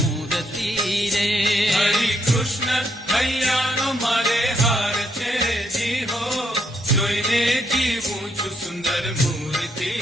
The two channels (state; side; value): normal; both; correlation 0.75